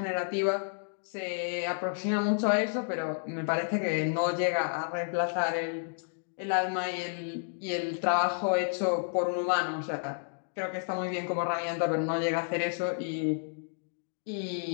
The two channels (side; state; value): right; silent; digital silence